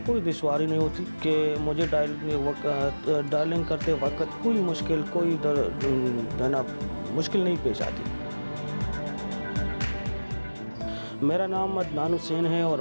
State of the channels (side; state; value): both; inverted; correlation -1.00